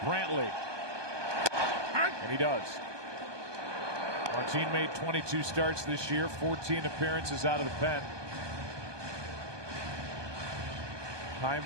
Brantley. And he does. Martin made 22 starts this year, 14 appearances out of the pen. Chaim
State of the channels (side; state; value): left; late; 1.2 ms